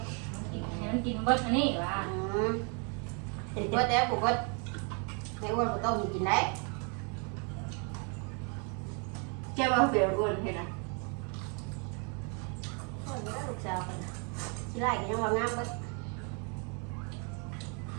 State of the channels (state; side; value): quieter; left; 36.9 dB